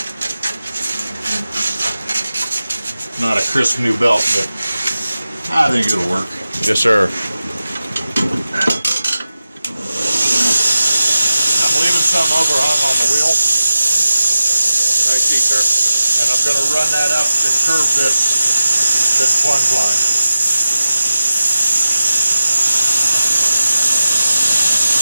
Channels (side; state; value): both; inverted; correlation -0.93